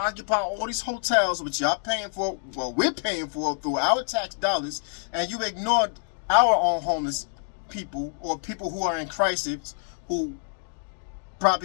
all these hotels, which y'all paying for, well, we're paying for through our tax dollars, and you ignored our own homeless people or people who are in crisis, who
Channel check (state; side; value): silent; right; digital silence